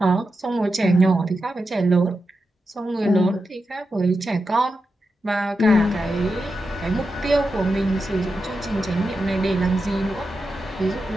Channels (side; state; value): both; normal; correlation 0.89